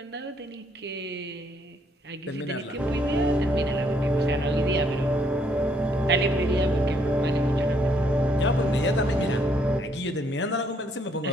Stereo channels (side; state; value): both; normal; correlation 0.69